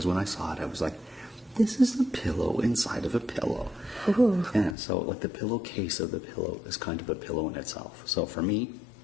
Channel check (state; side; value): drops out; right; at 4.8 s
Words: when I saw it, I was like, this is a pillow inside of a pillow. Ooh. Yeah, so like the pillowcase of the pillow is kind of a pillow in itself. So for me,